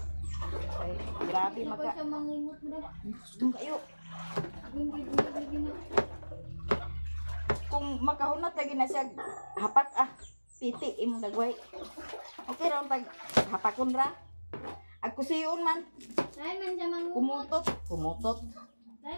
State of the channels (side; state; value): both; inverted; correlation -1.00